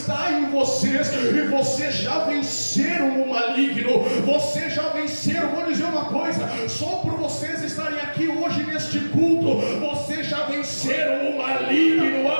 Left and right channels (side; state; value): both; inverted; correlation -1.00